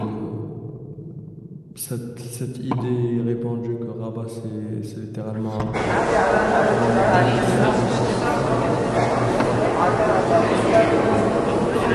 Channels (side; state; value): both; identical; correlation 1.00